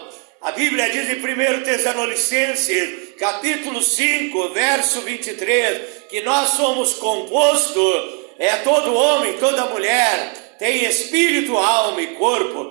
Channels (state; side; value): quieter; left; 35.7 dB